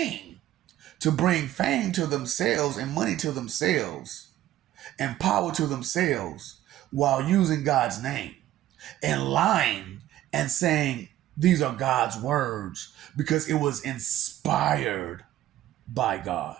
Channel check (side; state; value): left; quieter; 13.6 dB